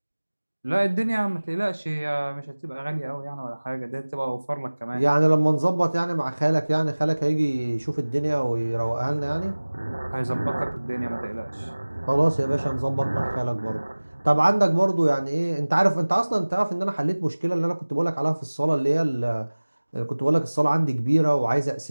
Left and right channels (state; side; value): inverted; both; correlation -1.00